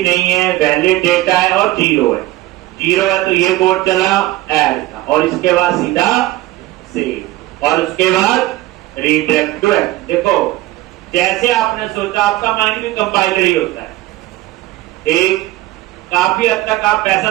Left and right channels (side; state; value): left; quieter; 17.3 dB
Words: नहीं है, वैलिड डेटा है और 0 है। 0 है तो ये कोड चला ऐड का और इसके बाद सीधा सेव और उसके बाद रीडायरेक्ट टू एक्शन। देखो जैसे आपने सोचा, आपका माइंड भी कंपाइलर ही होता है। एक काफी हद तक आप ऐसा